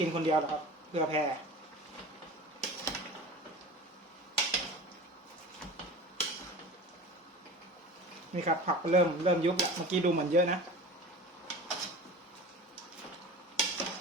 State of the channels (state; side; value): normal; both; correlation 0.36